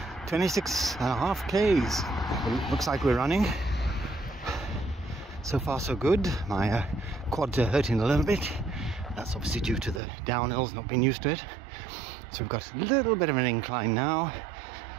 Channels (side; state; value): left; drops out; at 10.0 s